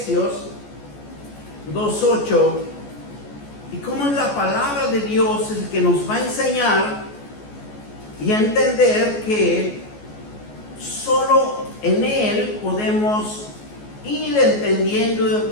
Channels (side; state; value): right; late; 14 ms